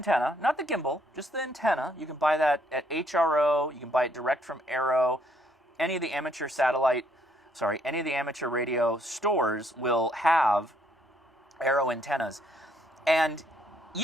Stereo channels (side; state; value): both; normal; correlation 0.69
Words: not the gimbal, just the antenna. You can buy that at HRO. You can buy it direct from Arrow. Any of the amateur radio stores will have Arrow antennas. And